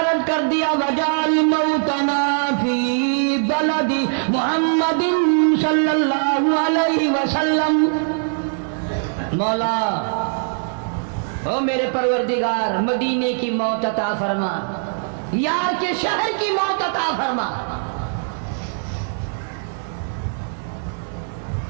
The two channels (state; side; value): silent; left; digital silence